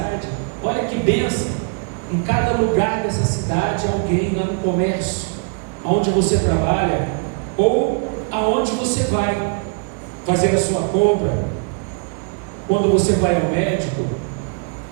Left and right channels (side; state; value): left; quieter; 38.0 dB